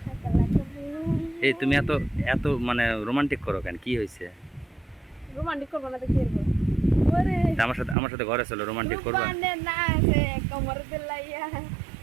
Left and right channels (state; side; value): drops out; left; at 8.0 s